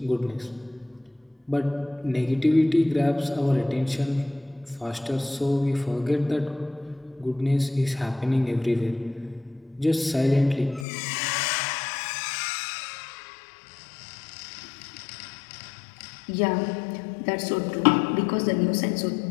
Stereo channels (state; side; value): drops out; right; at 10.9 s